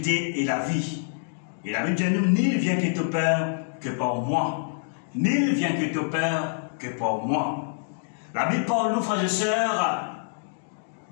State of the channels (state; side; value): silent; right; digital silence